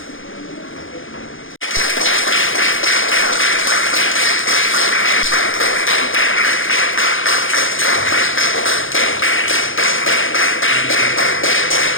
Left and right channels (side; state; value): right; late; 0.58 ms